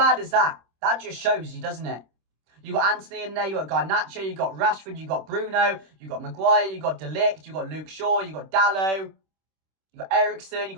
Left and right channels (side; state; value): left; late; 26 ms